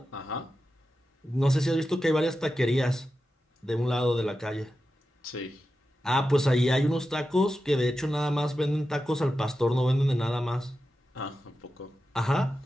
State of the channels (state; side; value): normal; both; correlation 0.91